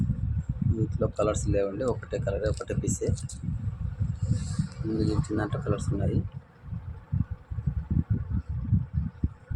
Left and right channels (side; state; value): both; identical; correlation 1.00